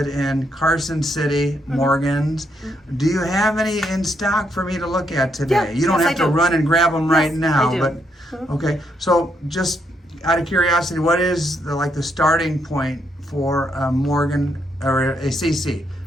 in Carson City Morgans. Do you have any in stock for me to look at today? Yeah, You don't yes, have I to do. run and grab them right Yes, now. I do. But okay, so just out of curiosity, what is the starting point for a Morgan or a CC?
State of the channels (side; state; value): both; normal; correlation 0.76